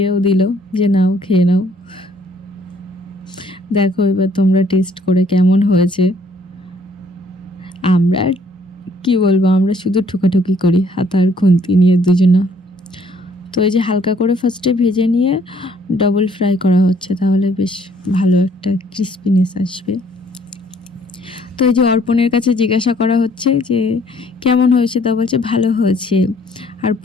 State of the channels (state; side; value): normal; both; correlation 0.62